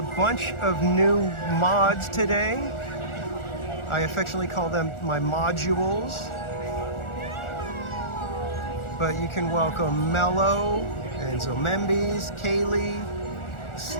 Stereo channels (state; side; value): late; right; 1.4 ms